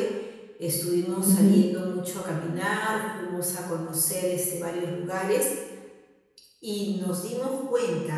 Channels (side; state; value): both; identical; correlation 1.00